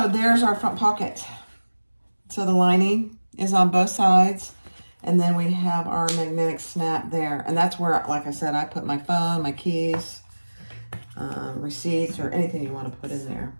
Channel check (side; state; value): both; inverted; correlation -1.00